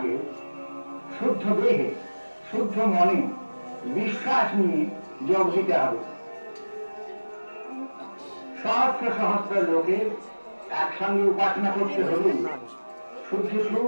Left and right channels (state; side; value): inverted; both; correlation -1.00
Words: শুদ্ধ দেহে শুদ্ধ মনে বিশ্বাস নিয়ে যোগ দিতে হবে। সহস্র সহস্র লোকের একসঙ্গে উপাসনা করতে হলে শুদ্ধ